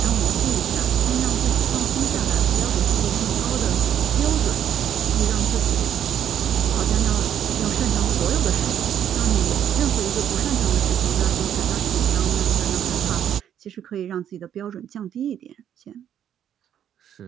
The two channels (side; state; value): left; quieter; 9.8 dB